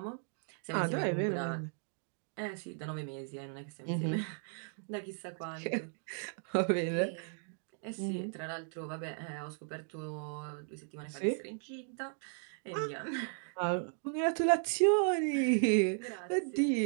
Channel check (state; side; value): silent; left; 54 dB below the other